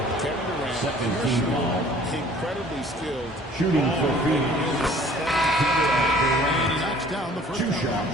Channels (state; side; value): normal; both; correlation 0.52